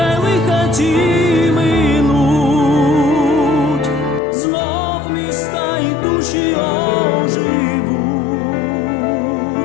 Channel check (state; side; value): drops out; right; at 4.2 s